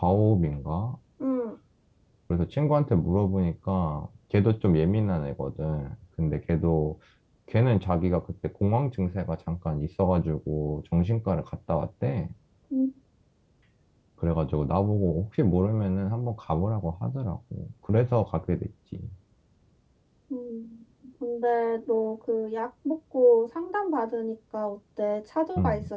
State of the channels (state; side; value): identical; both; correlation 1.00